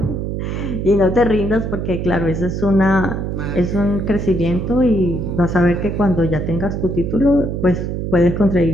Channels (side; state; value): right; noise; hum, 3 dB below the sound